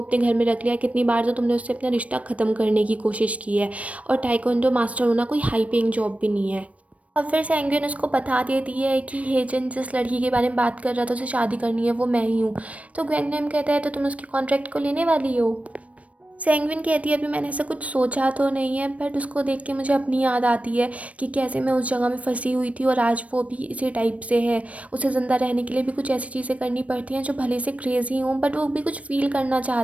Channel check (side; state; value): left; late; 0.065 ms